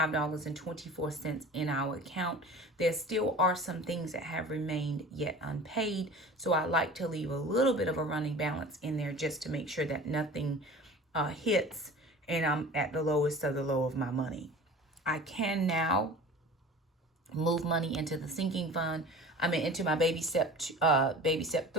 in our account. There still are some things that have remained yet unpaid, so I like to leave a little bit of a running balance in there just to make sure that nothing hits and I'm at the lowest of the low of my money. I can now move money into the sinking fund. Into my baby step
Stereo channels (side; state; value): both; normal; correlation 0.40